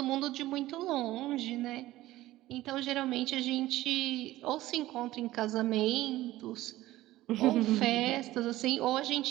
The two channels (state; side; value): quieter; left; 16.3 dB